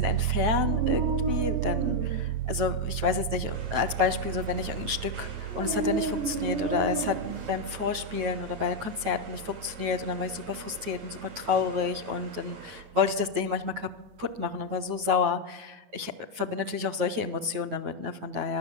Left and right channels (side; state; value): left; late; 9.2 ms